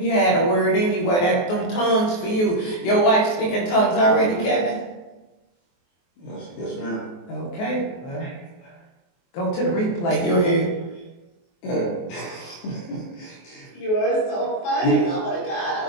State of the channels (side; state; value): right; late; 23 ms